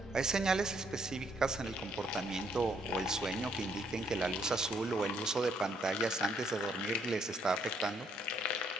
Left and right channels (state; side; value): normal; both; correlation 0.70